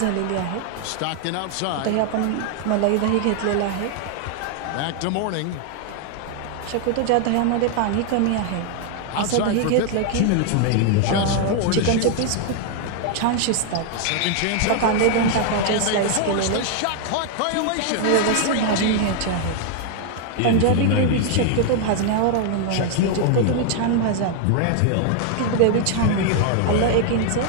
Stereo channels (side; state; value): both; different; correlation 0.00